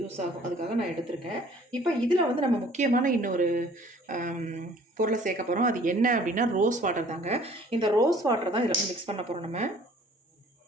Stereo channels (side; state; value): both; normal; correlation 0.54